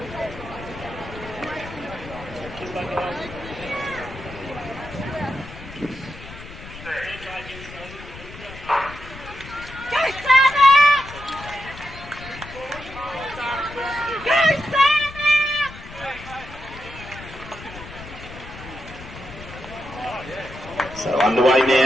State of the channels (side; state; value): left; noise; rumble, 15 dB below the sound